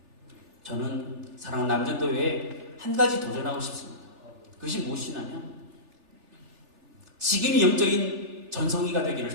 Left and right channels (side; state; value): left; late; 3.4 ms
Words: 저는 사랑하는 남전도회에 한 가지 도전하고 싶습니다. 그것이 무엇이냐면 지금이 영적인 전성기가